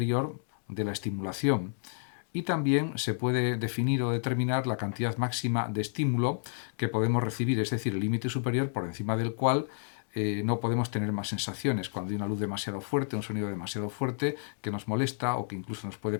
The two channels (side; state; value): right; silent; digital silence